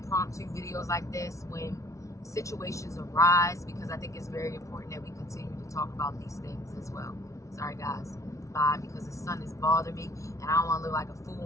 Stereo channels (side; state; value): right; late; 0.15 ms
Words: videos like this when situations arise, because I think it's very important that we continue to talk about these things as well. Sorry guys, bye, because the sun is bothering me and I don't want to look like a